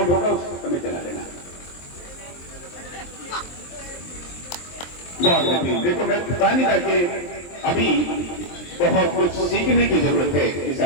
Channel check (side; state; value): right; late; 23 ms